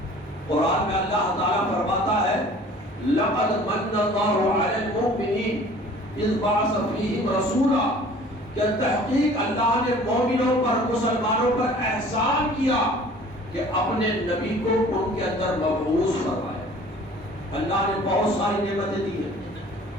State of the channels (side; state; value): both; normal; correlation 0.49